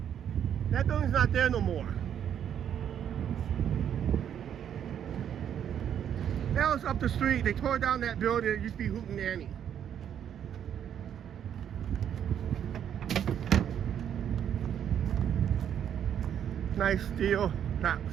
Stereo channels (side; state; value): left; quieter; 9.2 dB